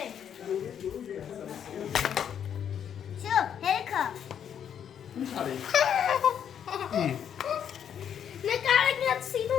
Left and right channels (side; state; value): right; quieter; 8.7 dB